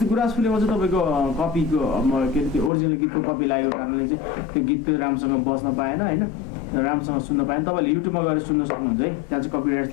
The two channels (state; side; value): drops out; right; at 2.7 s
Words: गुराँस फुलेमा चाहिँ तपाईँको कपीको के अरे त्यो ओरिजिनल गीतको कपी लागेको कारणले चाहिँ त्यो गीत राम्रोसँग बस्न पाएन होइन, राम्रोसँग सुन्न पाएन। तपाईँले युट्युबमा गएर सुन्न सक्नुहुन्छ है, त्यहाँ चाहिँ कपिराइट